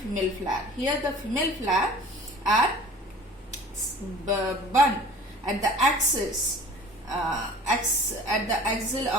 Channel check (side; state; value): both; normal; correlation 0.44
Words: flower. Here the female flower are bun at the axis, at the axil